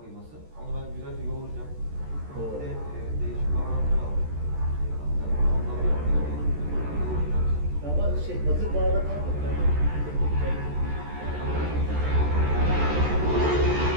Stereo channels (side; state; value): left; late; 14 ms